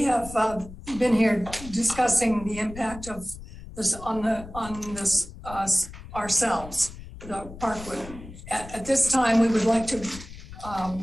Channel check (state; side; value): noise; left; rumble, 14 dB below the sound